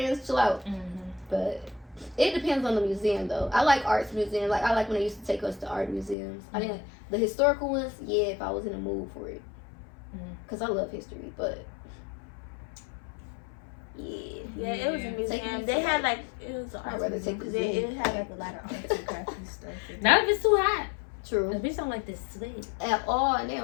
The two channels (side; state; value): right; drops out; at 6.2 s